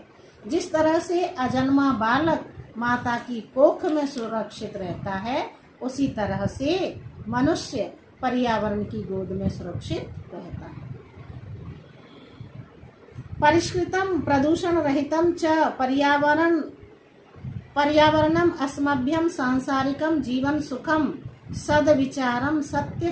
जिस तरह से अजन्मा बालक माता की कोख में सुरक्षित रहता है उसी तरह से मनुष्य पर्यावरण की गोद में सुरक्षित रहता है। परिष्कृतम प्रदूषण रहितम च पर्यावरणम अस्मभ्यम सांसारिकम जीवन सुखम सद्विचारम सत्य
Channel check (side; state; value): both; identical; correlation 1.00